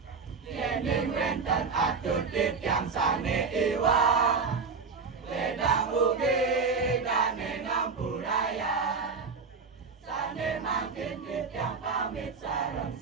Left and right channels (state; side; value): quieter; left; 5.0 dB